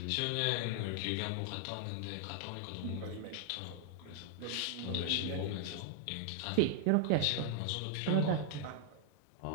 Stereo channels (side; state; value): both; different; correlation 0.00